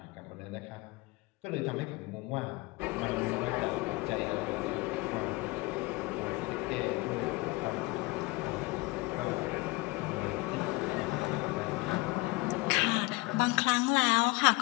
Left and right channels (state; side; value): quieter; right; 23.6 dB